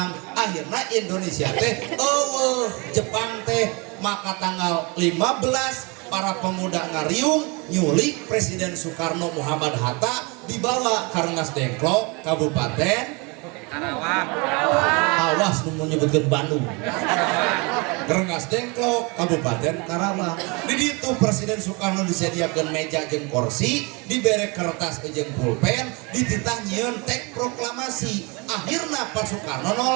akhirnya Indonesia teh Jepang teh maka tanggal 15 para pemuda ngariung nyulik Presiden Soekarno Muhammad Hatta dibawa ke Rengas Dengklok Kabupaten Karawang. awas nu menyebutkan Bandung Rengas Dengklok Kabupaten Karawang di ditu Presiden Soekarno disediakan meja jeung kursi dibere kertas jeung pulpen dititah nyieun teks proklamasi akhirna Pak Soekarno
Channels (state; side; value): quieter; left; 29.2 dB